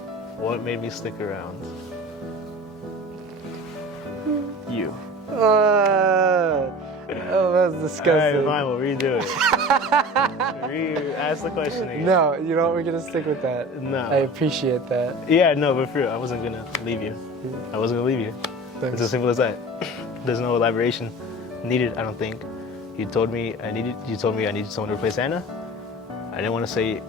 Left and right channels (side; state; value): both; normal; correlation 0.38